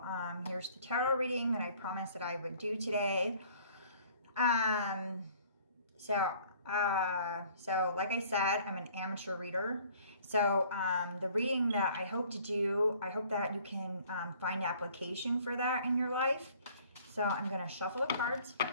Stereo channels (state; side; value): inverted; both; correlation -0.55